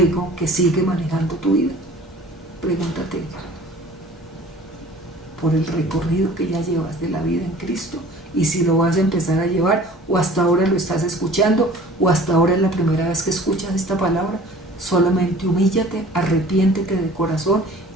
que sigue manejando tu vida? Pregúntate. Por el recorrido que ya llevas de la vida en Cristo, y si lo vas a empezar a llevar, o hasta ahora lo estás escuchando, o hasta ahora es la primera vez que escuchas esta palabra, solamente humíllate, arrepiéntete de corazón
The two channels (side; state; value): both; normal; correlation 0.47